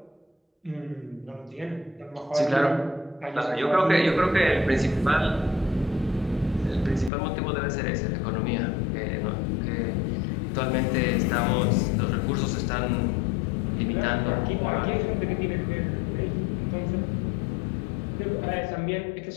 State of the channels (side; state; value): right; drops out; at 7.1 s